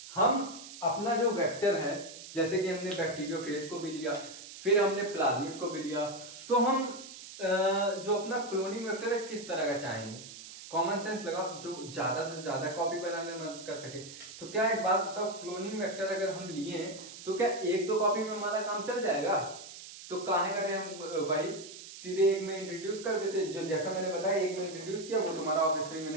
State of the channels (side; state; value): right; noise; hiss, 14 dB below the sound